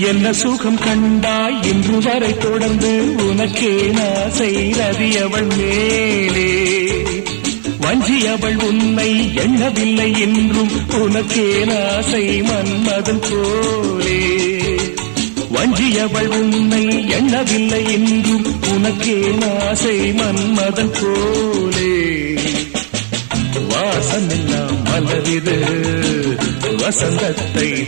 என்ன சுகம் கண்டாய் இன்று வரை தொடர்ந்து உனக்கே ஆசை ரதி அவள் மேலே வஞ்சி அவள் உன்னை எண்ணவில்லை என்றும் உனக்கே ஆசை மன்மதன் போலே வஞ்சி அவள் உன்னை எண்ணவில்லை என்றும் உனக்கே ஆசை மன்மதன் போலே வாசமெல்லாம் மலரிது வசந்தத்தை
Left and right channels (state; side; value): silent; left; 59 dB below the other